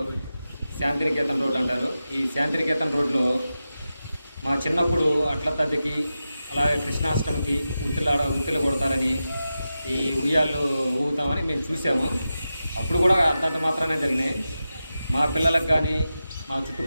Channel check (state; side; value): inverted; both; correlation -0.92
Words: శాంతినికేతన్ రోడ్ అంటారు. ఈ శాంతినికేతన్ రోడ్లో మా చిన్నప్పుడు అట్ల తద్దికి అలాగే కృష్ణాష్టమికి ఉత్తిలు కొడతారని, ఈ ఉయ్యాళ్ళు ఊగుతామని మేము చూసాము. అప్పుడు కూడా అంతంత మాత్రమే జరిగినాయి. మా పిల్లలకు కానీ మా